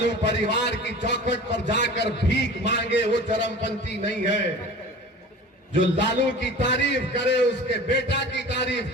परिवार की चौखट पर जाकर भीख मांगे वो चरमपंथी नहीं है। जो लालू की तारीफ करे, उसके बेटा की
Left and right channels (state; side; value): normal; both; correlation 0.39